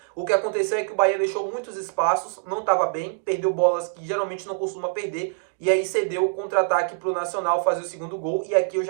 O que aconteceu é que o Bahia deixou muitos espaços, não estava bem, perdeu bolas que geralmente não costuma perder, e aí cedeu o contra-ataque para o Nacional fazer o segundo gol, e aqui eu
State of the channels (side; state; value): left; quieter; 39.7 dB